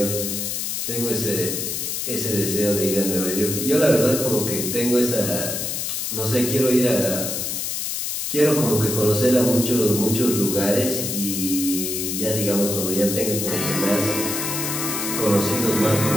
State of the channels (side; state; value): left; noise; hiss, 2 dB below the sound